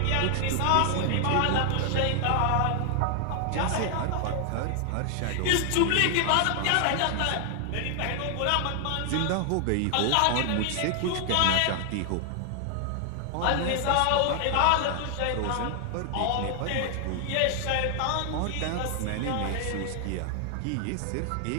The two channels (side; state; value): both; different; correlation 0.00